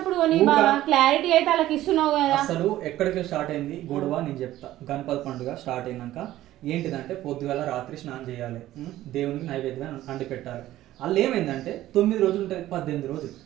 కొని బాగా క్లారిటీ అయితే వాళ్ళకి ఇస్తున్నావు కదా. అసలు ఎక్కడికి స్టార్ట్ అయింది గొడవ నేను చెప్తా. గణపతి పండుగ స్టార్ట్ అయినాక ఏంటిదంటే పొద్దుగాల రాత్రి స్నానం చేయాలి, దేవునికి నైవేద్యం అండి పెట్టాలి. వాళ్ళు ఏమైందంటే 9 రోజులు ఉంటుంది 18 రోజులు.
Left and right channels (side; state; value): left; quieter; 14.5 dB